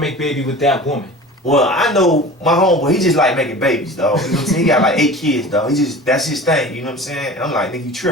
baby with that woman? Well, I know my homeboy, he just like making babies, dog. You know what I'm saying? He got like 8 kids, dog. That's his thing, you know what I'm saying? I'm like, nigga, you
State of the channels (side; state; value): both; normal; correlation 0.38